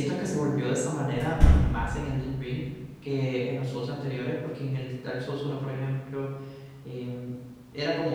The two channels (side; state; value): both; identical; correlation 1.00